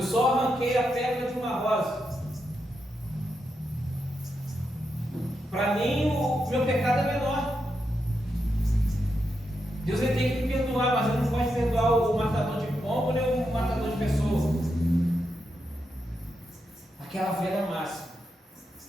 só arranquei a pedra de uma rosa. Para mim, o meu pecado é menor. Deus ele tem que me perdoar, mas ele não pode perdoar o matador de pombo nem o matador de pessoas. Aquela velha máxima.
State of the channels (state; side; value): normal; both; correlation 0.85